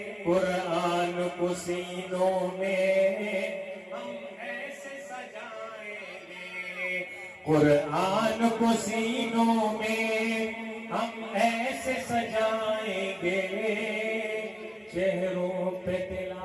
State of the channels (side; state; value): both; identical; correlation 1.00